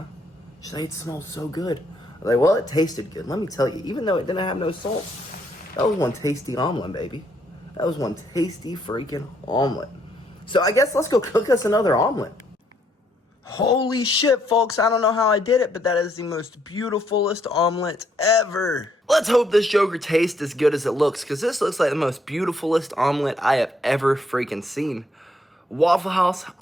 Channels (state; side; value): normal; both; correlation 0.71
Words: She's like, "It smells so good." I was like, "Well, it tasted good. Let me tell you, even though it didn't have no salt, that was one tasty omelet, baby. That was one tasty freaking omelet." So I guess let's go cook us another omelet. Holy shit, folks, I don't know how I did it, but that is the most beautifulest omelet ever. Let's hope this joker tastes as good as it looks, because this looks like the most beautifulest omelet I have ever freaking seen. Waffle House,